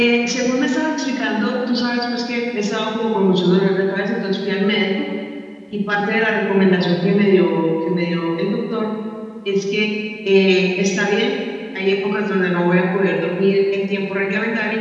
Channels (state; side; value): identical; both; correlation 1.00